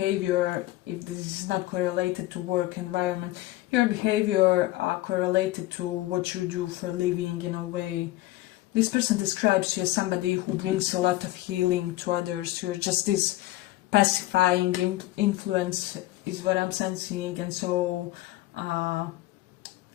If this is not correlated to work environment, your behavior correlated to what you do for a living, in a way. This person describes you as somebody who brings a lot of healing to others. You're just this pacifying influence is what I'm sensing. And so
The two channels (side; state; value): right; quieter; 17.3 dB